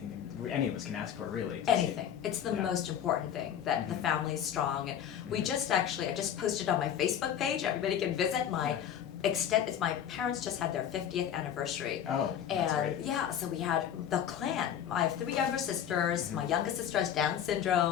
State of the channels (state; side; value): quieter; right; 9.5 dB